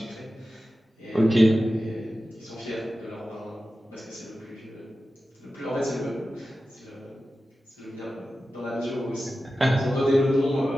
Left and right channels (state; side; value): normal; both; correlation 0.93